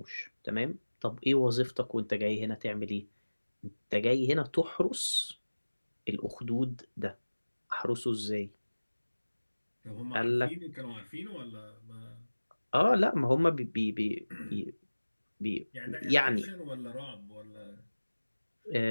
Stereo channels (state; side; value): inverted; both; correlation -1.00